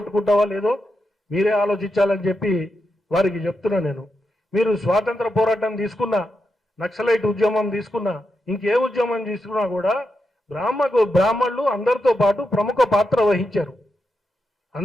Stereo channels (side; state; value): both; normal; correlation 0.85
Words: లేదో మీరే ఆలోచించాలని చెప్పి వారికి చెప్తున్నా నేను. మీరు స్వాతంత్ర పోరాటం తీసుకున్నా, నక్సలైట్ ఉద్యమం తీసుకున్నా, ఇంకే ఉద్యమం తీసుకున్నా కూడా బ్రాహ్మణులు అందరితో పాటు ప్రముఖ పాత్ర వహించారు.